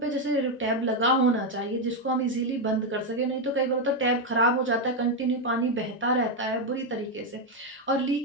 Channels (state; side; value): normal; both; correlation 0.04